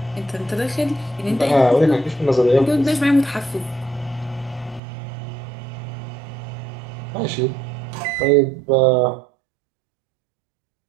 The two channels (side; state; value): left; drops out; at 4.8 s